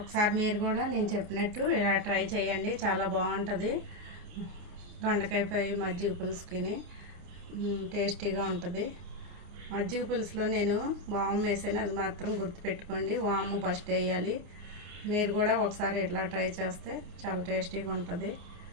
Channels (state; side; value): late; left; 29 ms